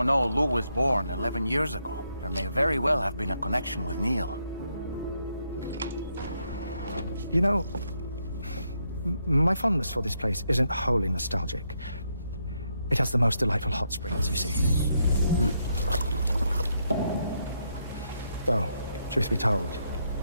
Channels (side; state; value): both; inverted; correlation -0.78